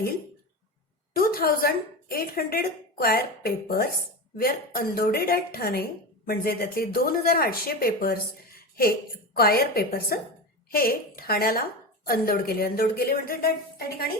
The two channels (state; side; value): normal; both; correlation 0.24